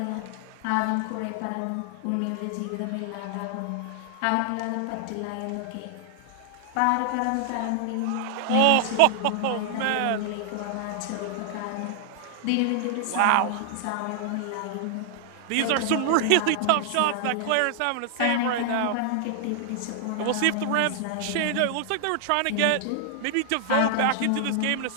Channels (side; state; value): both; different; correlation 0.00